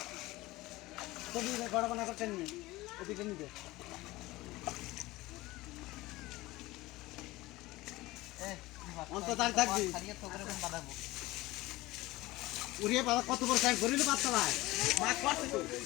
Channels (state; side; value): quieter; right; 19.4 dB